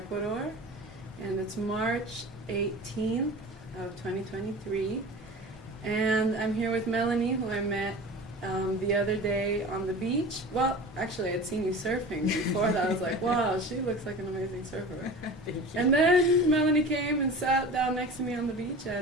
and it's March 18th of 2023. And I'm here with Melanie, who I met the other day on the beach. Well, actually, I'd seen you surfing before that. I was like, wow, she looks like an amazing surfer. And then Melanie came and sat down next to me on the beach,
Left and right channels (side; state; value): both; normal; correlation 0.36